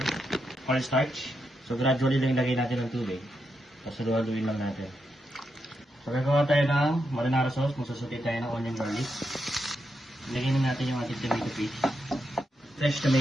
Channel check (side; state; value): both; normal; correlation 0.84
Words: cornstarch. So gradually lang ilagay natin ng tubig. Tapos haluin lang natin. So gagawa tayo ng marinara sauce. Magsusuti tayo ng onion garlic. Lagyan na natin yung ating tomato paste. Fresh